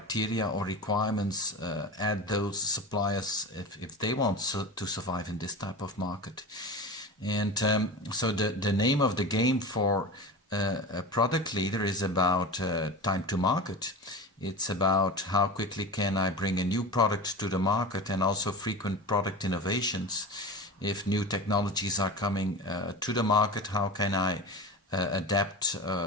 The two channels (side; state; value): both; normal; correlation 0.29